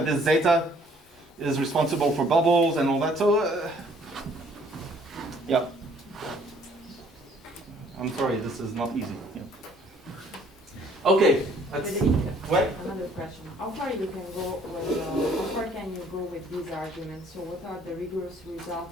this zeta is responsible for bubbles and all that. So, yeah. I'm sorry, this is not easy. Yeah. Okay. What? Another question. How far you can go with, how far can you go with these arguments? So what are the rigorous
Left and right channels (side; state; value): both; normal; correlation 0.60